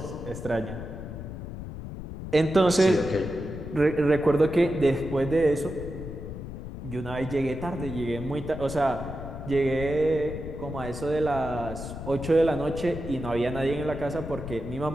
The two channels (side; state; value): left; noise; rumble, 9 dB below the sound